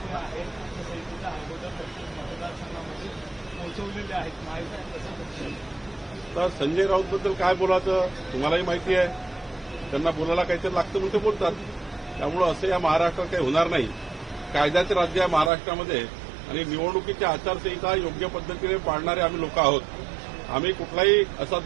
आहेत समितीच्या अगोदर मतदारसंघामध्ये पोहोचवलेले आहेत महायुतीत कसं बघतो? तर संजय राऊतबद्दल काय बोलायचं तुम्हालाही माहिती आहे. त्यांना बोलायला काहीतरी लागतं म्हणून ते बोलतात. त्यामुळं असं या महाराष्ट्रात काही होणार नाही. कायद्याचे राज्य आहे महाराष्ट्रामध्ये आणि निवडणुकीची आचारसंहिता योग्य पद्धतीने पाळणारे आम्ही लोक आहोत. आम्ही कुठलाही असा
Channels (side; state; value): left; drops out; at 15.5 s